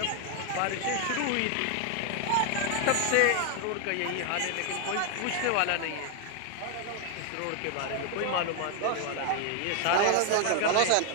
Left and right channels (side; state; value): both; different; correlation 0.00